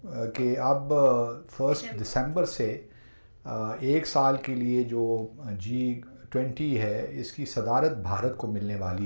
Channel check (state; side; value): inverted; both; correlation -1.00